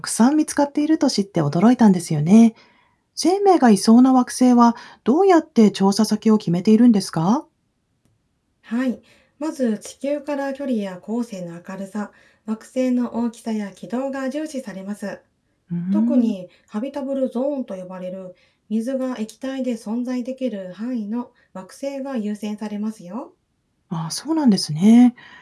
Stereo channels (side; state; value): both; identical; correlation 1.00